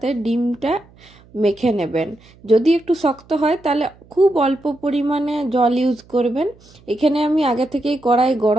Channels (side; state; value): right; noise; hum, 27 dB below the sound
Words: ডিমটা মেখে নেবেন। যদি একটু শক্ত হয় তাহলে খুব অল্প পরিমাণে জল ইউজ করবেন। এখানে আমি আগে থেকেই কড়াই